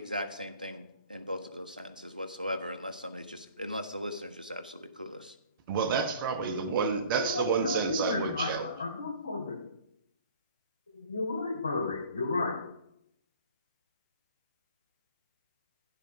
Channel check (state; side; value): inverted; both; correlation -0.47